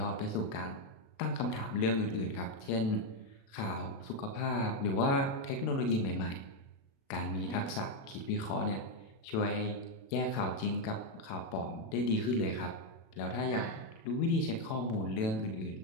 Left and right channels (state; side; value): late; right; 37 ms